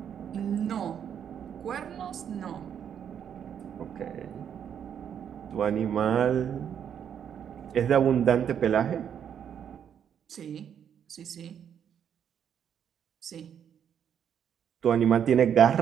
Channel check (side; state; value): left; quieter; 8.6 dB